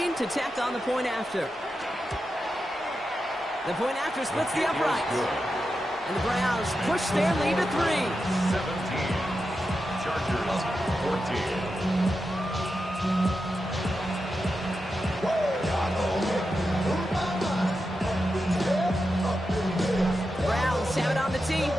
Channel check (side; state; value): both; normal; correlation 0.89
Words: to tack on the point after. The point after splits the uprights. And the Browns push their lead to 3. 17. Chargers 14. Have it on the team,